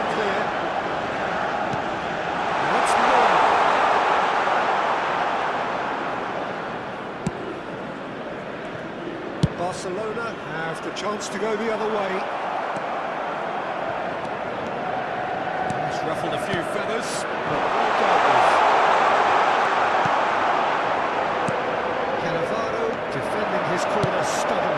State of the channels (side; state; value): both; identical; correlation 1.00